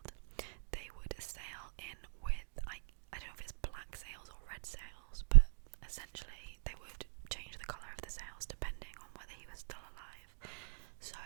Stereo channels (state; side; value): silent; left; digital silence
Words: they would sail in with, I don't know if it's black sails or red sails, but essentially they would change the colour of the sails depending on whether he was still alive. So